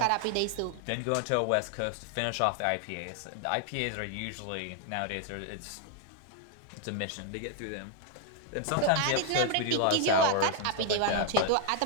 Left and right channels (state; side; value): different; both; correlation 0.00